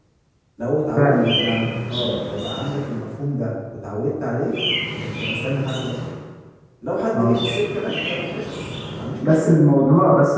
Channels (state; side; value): identical; both; correlation 1.00